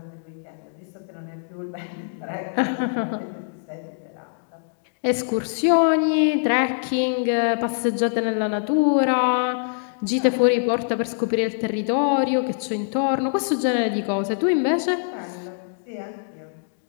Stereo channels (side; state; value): right; silent; digital silence